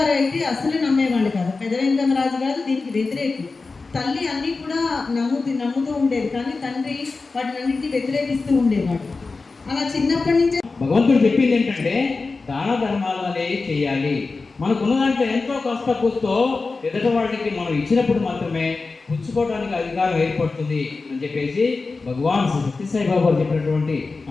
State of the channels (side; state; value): right; quieter; 4.0 dB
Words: అయితే అసలు నమ్మేవాళ్ళు కాదు. పెద్ద వెంకమరాజు గారు దీనికి వ్యతిరేకి. తల్లి అన్నీ కూడా నమ్ముతూ ఉండేది, కానీ తండ్రి వాటినన్నింటినీ వ్యతిరేకిస్తూ ఉండేవాడు. అలా చిన్నప్పటి నుంచే భగవంతుడు చెప్పింది ఏంటంటే దాన ధర్మాలు అనేవి చేయాలి. మనకున్న దాంట్లో ఎంతో కష్ట కూస్తో ఎదుటి వాళ్ళకి మనం ఇచ్చినప్పుడు మాత్రమే పుచ్చుకోవడానికి అధికారం ఏర్పడుతుంది అని చెప్పేసి భగవాన్ సత్యసాయి బాబా చెప్పినటువంటి